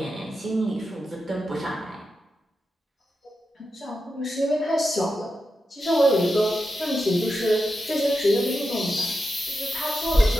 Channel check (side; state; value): both; normal; correlation 0.89